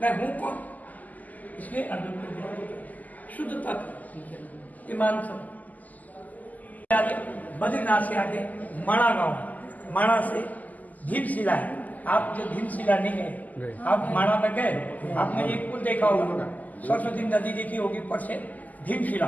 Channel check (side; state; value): right; late; 0.080 ms